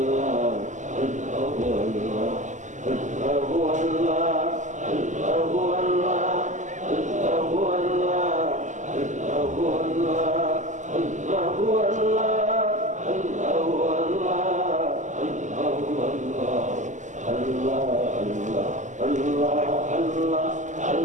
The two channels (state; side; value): late; left; 0.35 ms